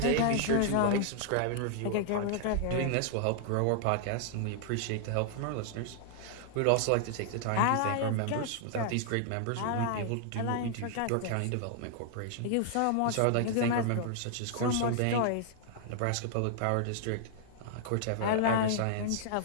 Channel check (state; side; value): different; both; correlation -0.01